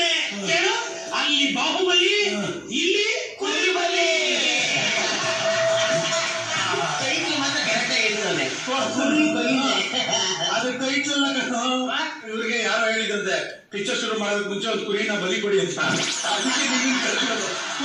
ಕೇಳು. ಅಲ್ಲಿ ಬಾಹುಬಲಿ, ಇಲ್ಲಿ ಕುರಿಬಲಿ. ಅದು ಟೈಟ್ಲ್ ಇವ್ರಿಗೆ ಯಾರೋ ಹೇಳಿದಂತೆ, ಪಿಕ್ಚರ್ ಶುರು ಮಾಡೋದಕ್ಕೆ ಮುಂಚೆ ಒಂದು ಕುರಿನ ಬಲಿ ಕೊಡಿ ಅಂತ.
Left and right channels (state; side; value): identical; both; correlation 1.00